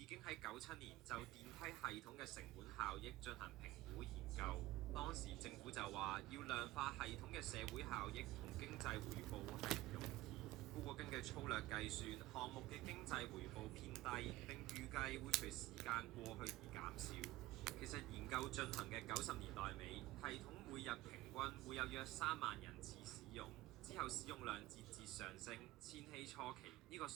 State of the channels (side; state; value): left; quieter; 17.1 dB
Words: 經喺97年就電梯系統嘅成本效益進行評估研究。當時政府就話要量化系統嘅社會效益同經濟回報係唔容易。不過根據粗略計算，項目嘅經濟回報偏低，並預計會隨時間過去而減少。其實研究進行嘅90年代尾，系統每日平均會有約3萬人次使用。之後使用量節節上升，千禧初期呢個